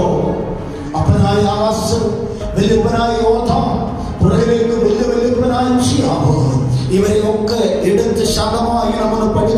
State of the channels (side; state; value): both; identical; correlation 1.00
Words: അപ്പനായ ആകാശം, വല്യപ്പനായ യോഥാം, പുറകിലേക്ക് വല്യപ്പനായ ഉസിയാവ്, ഇവരെയൊക്കെ എടുത്ത് ശതമായി നമ്മൾ